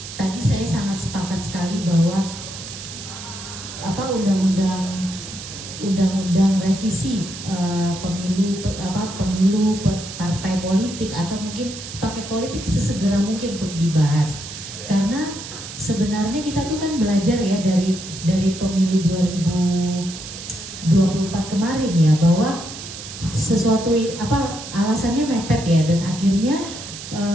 tadi saya sangat sepakat sekali bahwa undang-undang revisi pemilu partai politik atau mungkin paket politik sesegera mungkin untuk dibahas, karena sebenarnya kita tuh kan belajar ya dari pemilu 2024 kemarin ya, bahwa sesuatu alasannya mepet ya, dan akhirnya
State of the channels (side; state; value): right; noise; hiss, 11 dB below the sound